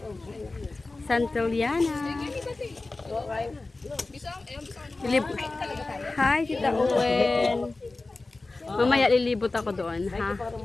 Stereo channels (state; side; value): quieter; right; 3.3 dB